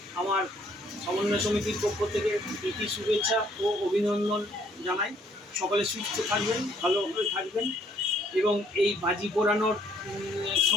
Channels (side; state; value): both; normal; correlation 0.65